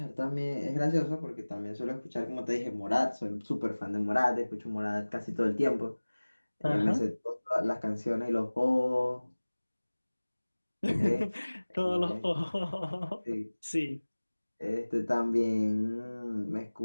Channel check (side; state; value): both; inverted; correlation -1.00